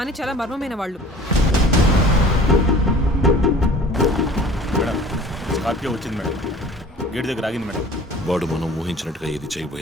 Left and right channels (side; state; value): both; normal; correlation 0.46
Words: చాలా మర్మమైన వాళ్ళు. మేడం, స్కార్పియో వచ్చింది మేడం. గేట్ దగ్గర ఆగింది మేడం. వాడు మనం ఊహించినట్టుగా ఏది